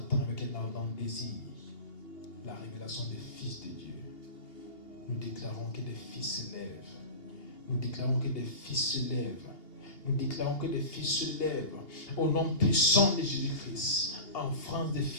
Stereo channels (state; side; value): late; right; 2.8 ms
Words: avec un ardent désir la révélation des fils de Dieu. Nous déclarons que des fils se lèvent. Nous déclarons que des fils se lèvent. Nous déclarons que des fils se lèvent. Au nom puissant de Jésus-Christ. En France, des